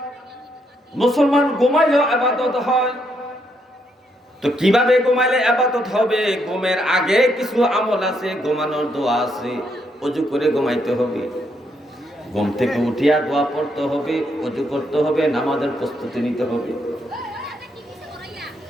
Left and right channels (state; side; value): normal; both; correlation 0.76